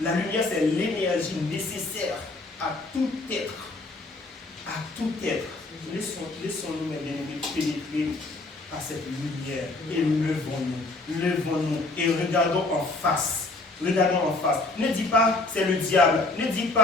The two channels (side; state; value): right; quieter; 3.1 dB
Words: La lumière, c'est l'énergie nécessaire à tout être. À tout être. Laissons-nous, mes bien-aimés, pénétrer à cette lumière et levons-nous et regardons en face. Regardons en face. Ne dis pas c'est le diable, ne dis